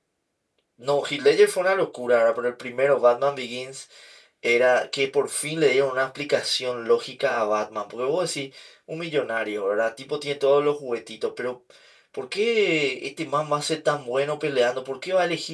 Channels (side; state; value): both; identical; correlation 1.00